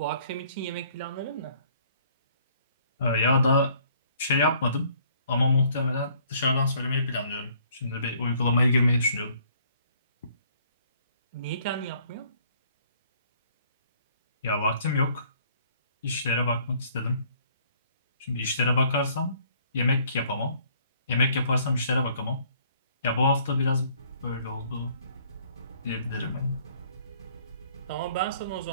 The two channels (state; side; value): inverted; both; correlation -0.61